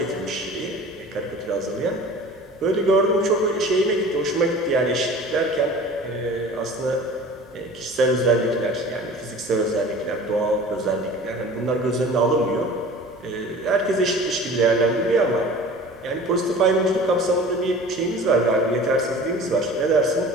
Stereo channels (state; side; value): normal; both; correlation 0.41